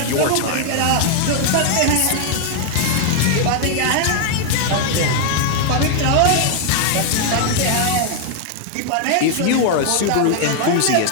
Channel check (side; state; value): both; different; correlation 0.00